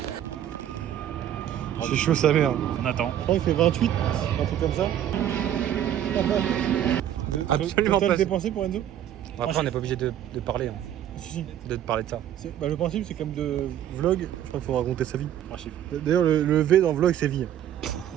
C'est chaud sa mère. On attend. Je crois qu'il fait 28, un truc comme ça. Absolument Total pas. dépensé pour Enzo? Après, on n'est pas obligé de parler, hein, Si. de parler de ça. Bah, le principe, c'est comme de vlog. Je crois qu'il faut raconter sa vie. 3 chiffres. D'ailleurs, le V dans vlog, c'est vie.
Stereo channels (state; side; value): quieter; left; 10.9 dB